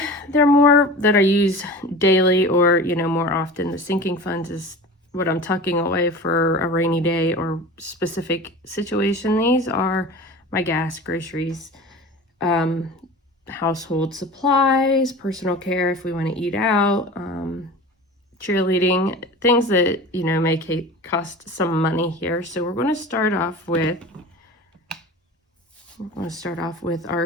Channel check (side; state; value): both; normal; correlation 0.35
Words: they're more that I use daily or, you know, more often. The sinking funds is what I'm tucking away for a rainy day or specific situation. These are my gas, groceries, household supplies, personal care if we want to eat out, cheerleading, things that, you know, may cost some money here. So we're going to start off with